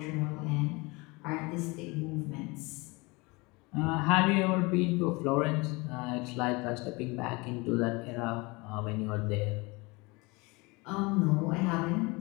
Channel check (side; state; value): right; quieter; 25.7 dB